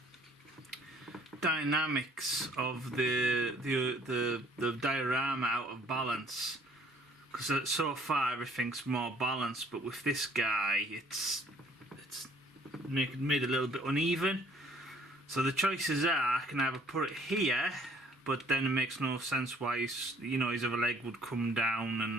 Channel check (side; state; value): both; normal; correlation 0.58